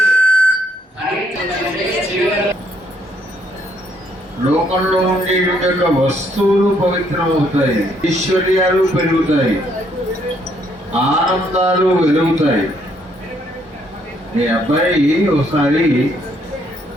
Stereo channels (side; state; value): both; normal; correlation 0.70